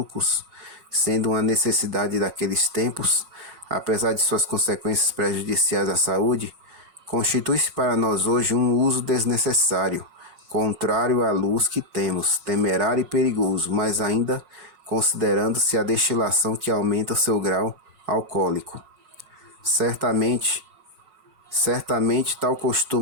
sendo uma necessidade daqueles tempos, apesar de suas consequências prejudiciais à saúde, constitui-se para nós hoje um uso desnecessário, contrário à luz que temos, temerário e perigoso, mas ainda considerando-se a destilação que aumenta o seu grau alcoólico. Certamente tal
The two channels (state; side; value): late; left; 5.5 ms